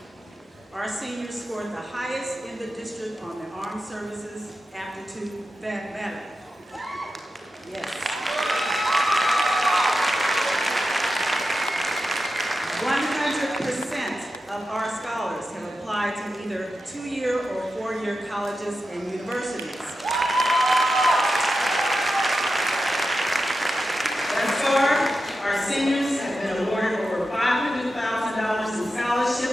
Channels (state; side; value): normal; both; correlation 0.90